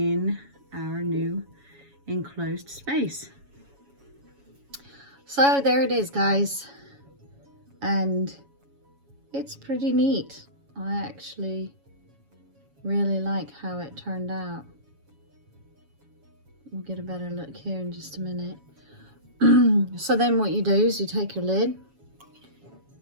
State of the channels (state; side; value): late; left; 7.2 ms